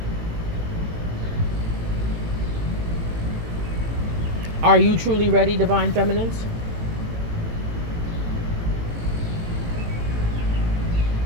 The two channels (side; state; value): left; late; 18 ms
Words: Are you truly ready, divine feminines?